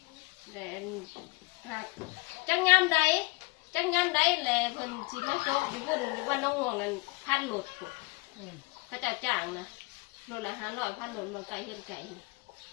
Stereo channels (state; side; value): quieter; right; 26.1 dB